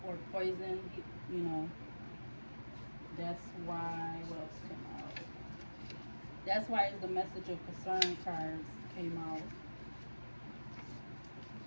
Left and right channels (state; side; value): inverted; both; correlation -1.00